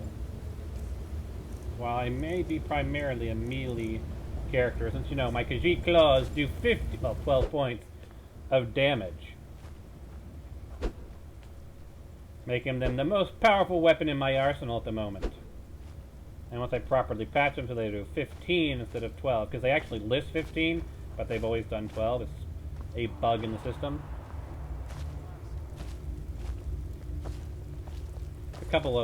While I may be primarily a melee character, since you know my Khajiit claws do 12 points of damage, making them the most powerful weapon in my arsenal at the moment. And once I properly patch them so they do 15 instead of 12, because they actually list 15, but they've always done 12. It's a bug in the system. A couple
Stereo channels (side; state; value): both; identical; correlation 1.00